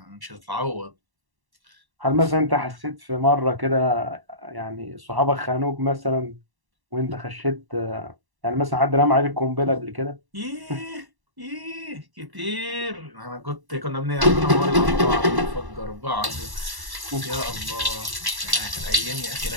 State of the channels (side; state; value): left; late; 1.1 ms